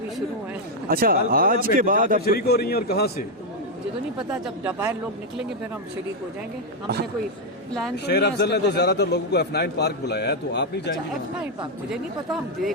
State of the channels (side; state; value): both; normal; correlation 0.01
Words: शुरू है। अच्छा, आज के बाद आप शरीक हो रही हैं और कहाँ से? मुझे तो नहीं पता, जब बाहर लोग निकलेंगे फिर हम शरीक हो जाएंगे। हमने कोई प्लान तो शेर नहीं है अफजल ने इसका। तो ज्यादातर लोगों को F9 पार्क बुलाया है, तो आप नहीं अच्छा, जाएंगे? F9 पार्क मुझे नहीं पता, हम